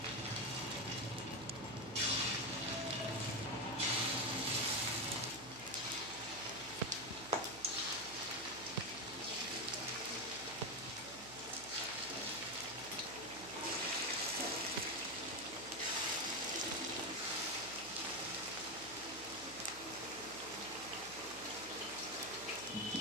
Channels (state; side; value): noise; right; hum, 17 dB below the sound